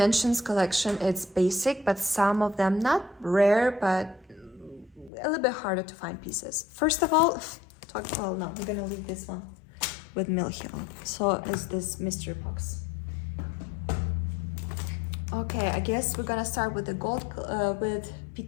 collection is basic, but some of them not rare, but a little bit harder to find pieces. First of all, no, we're gonna leave this one with Milhill. So is this mystery box. Okay, I guess we're gonna start with the gold, with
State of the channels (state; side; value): drops out; right; at 5.1 s